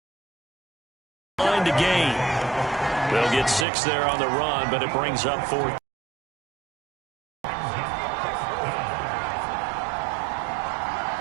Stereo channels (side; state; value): left; drops out; at 3.7 s